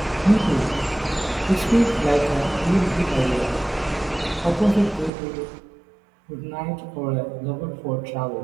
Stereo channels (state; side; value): drops out; left; at 5.1 s